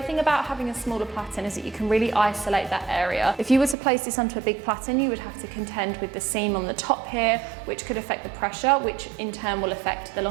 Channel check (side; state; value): left; drops out; at 3.8 s